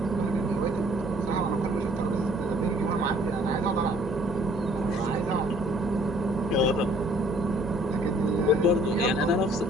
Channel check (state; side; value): normal; both; correlation 0.58